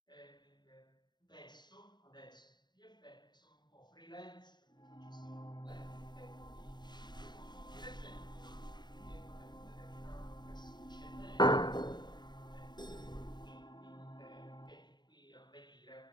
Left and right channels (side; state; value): right; late; 0.21 ms